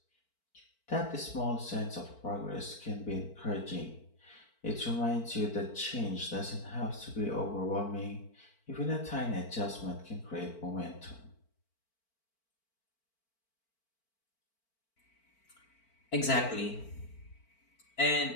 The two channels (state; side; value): late; right; 4.4 ms